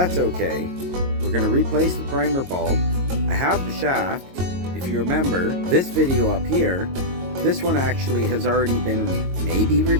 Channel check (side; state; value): left; late; 22 ms